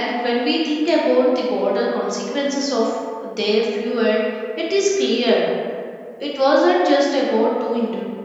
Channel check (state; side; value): identical; both; correlation 1.00